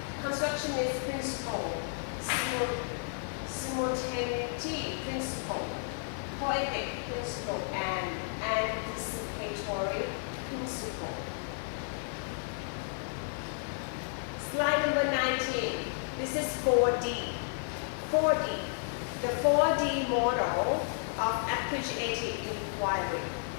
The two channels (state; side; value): silent; right; 56 dB below the other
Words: constructionist principle, simultaneity principle, poetic principle, and anticipatory principle. Slide number 19. This is 4D. 4D. The 4D model of appreciative inquiry.